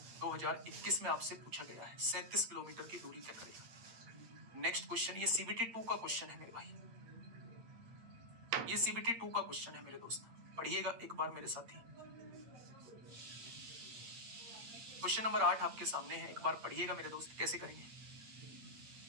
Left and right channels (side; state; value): left; late; 8.7 ms